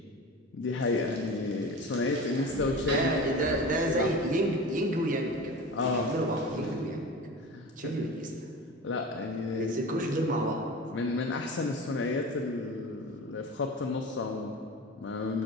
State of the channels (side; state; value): both; normal; correlation 0.33